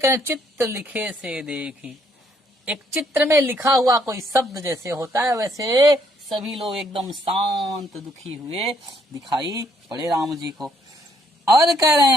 चित्र लिखे से देखी। एक चित्र में लिखा हुआ कोई शब्द जैसे होता है, वैसे सभी लोग एकदम शांत दुखी हुए दिखाई पड़े राम जी को। और कह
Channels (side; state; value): both; normal; correlation 0.69